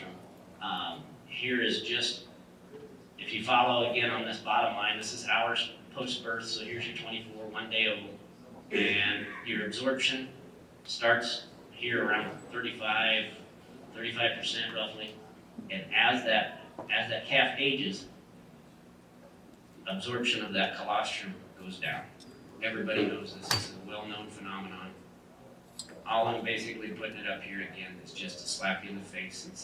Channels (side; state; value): both; identical; correlation 1.00